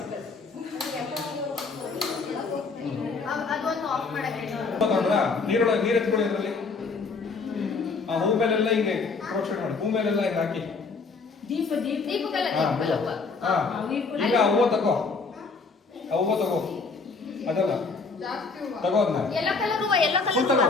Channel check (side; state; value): right; quieter; 4.5 dB